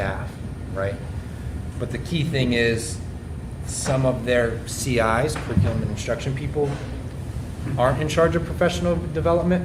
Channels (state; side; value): identical; both; correlation 1.00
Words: right? But the key thing is some of their CIs, curriculum and instruction people, aren't in charge of professional